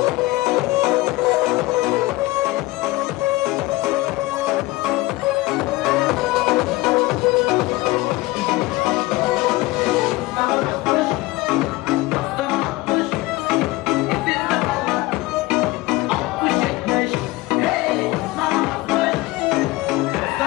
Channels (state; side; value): quieter; right; 20.2 dB